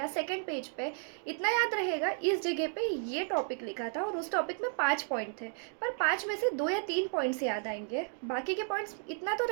सेकंड पेज पे। इतना याद रहेगा इस जगह पे ये टॉपिक लिखा था और उस टॉपिक में 5 पॉइंट थे, पर 5 में से 2 या 3 पॉइंट्स याद आएंगे, बाकी के पॉइंट्स इतना तो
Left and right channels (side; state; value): left; silent; 56 dB below the other